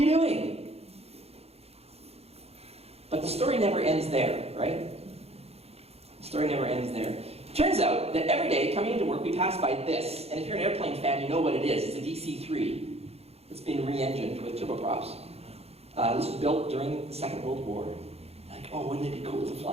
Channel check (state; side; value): late; left; 0.30 ms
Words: doing? But the story never ends there, right? The story never ends there. Turns out that every day, coming into work, we pass by this. And if you're an airplane fan, you know what it is. It's a DC-3. It's been re-engined with turboprops. This was built during the Second World War. Like, oh, wouldn't it be cool to